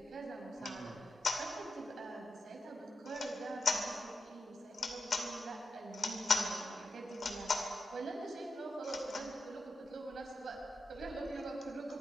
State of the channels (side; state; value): both; normal; correlation 0.88